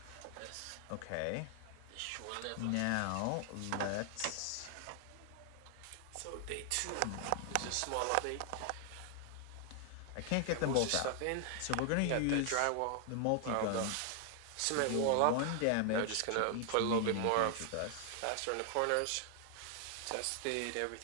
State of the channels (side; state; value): both; different; correlation 0.00